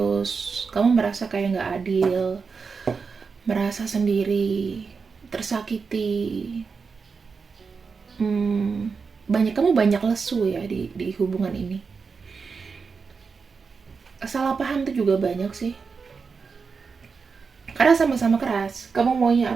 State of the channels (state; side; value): quieter; left; 5.2 dB